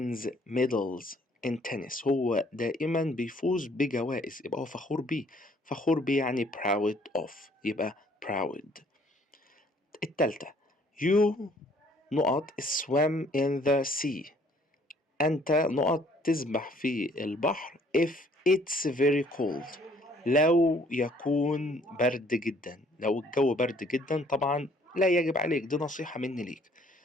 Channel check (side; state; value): both; normal; correlation 0.61